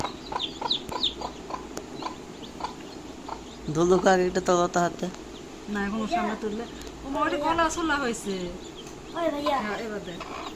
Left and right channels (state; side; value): identical; both; correlation 1.00